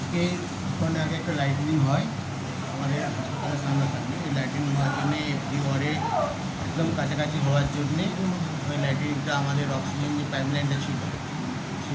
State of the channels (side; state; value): both; identical; correlation 1.00